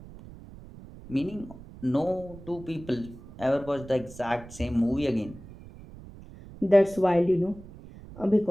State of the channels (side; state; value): right; noise; rumble, 17 dB below the sound